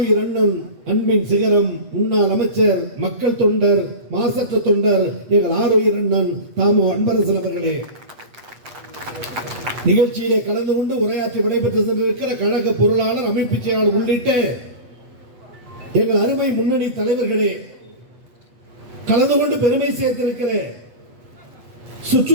அண்ணன், அன்பின் சிகரம், முன்னாள் அமைச்சர், மக்கள் தொண்டர், மாசற்ற தொண்டர், எங்கள் ஆருயிர் அண்ணன் தாமு அன்பரசன் அவர்களே, நிகழ்ச்சியிலே கலந்து கொண்டு உரையாற்றி விடைபெற்று சென்றிருக்கிற கழக பொருளாளர், அமைப்பு செயலாளர் உள்ளிட்ட எங்கள் அருமை முன்னணி தலைவர்களே, கலந்து கொண்டு பெருமை சேர்த்திருக்கிற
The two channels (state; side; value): late; left; 8.1 ms